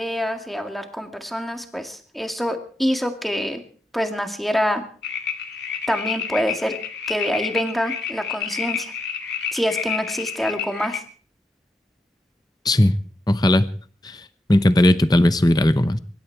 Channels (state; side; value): normal; both; correlation 0.85